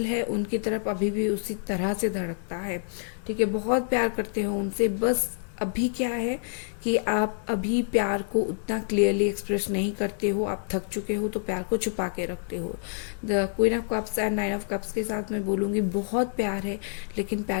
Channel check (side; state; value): right; silent; 60 dB below the other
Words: है उनकी तरफ अभी भी उसी तरह से धड़कता है। ठीक है, बहुत प्यार करते हो उनसे, बस अभी क्या है कि आप अभी प्यार को उतना क्लियरली एक्सप्रेस नहीं करते हो, आप थक चुके हो तो प्यार को छुपा के रखते हो। The queen of cups and nine of cups के साथ मैं बोलूँगी बहुत प्यार है लेकिन